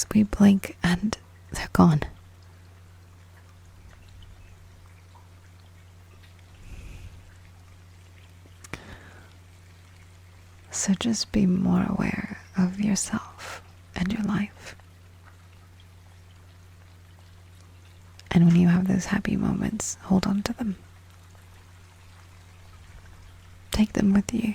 we blink and they're gone. So just be more aware of yourself and your life. And when you have those happy moments, hold on to them. Take them with you.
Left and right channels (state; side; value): identical; both; correlation 1.00